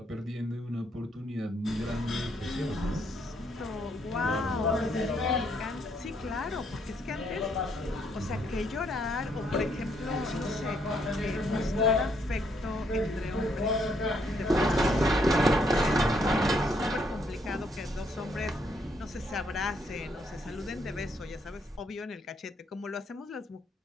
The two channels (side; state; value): both; normal; correlation 0.71